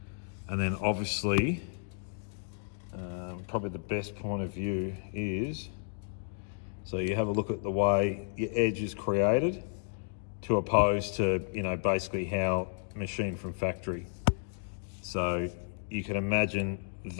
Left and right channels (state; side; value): silent; right; digital silence